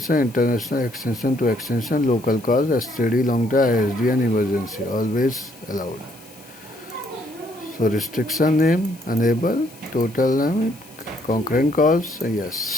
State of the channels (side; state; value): left; noise; hiss, 23 dB below the sound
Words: international extension to extension, local calls, STD, long term, ISD, and emergency. Always allowed. So restriction name, enable, total limit, concurrent calls,